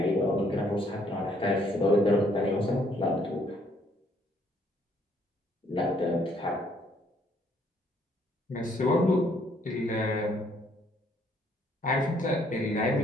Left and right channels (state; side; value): normal; both; correlation 0.66